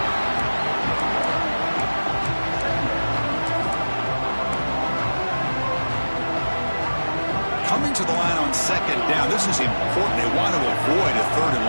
Coming to the line on 2nd down. This is important. They want to avoid a 3rd and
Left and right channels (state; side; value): inverted; both; correlation -1.00